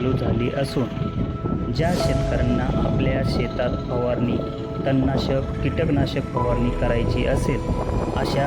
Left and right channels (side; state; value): both; identical; correlation 1.00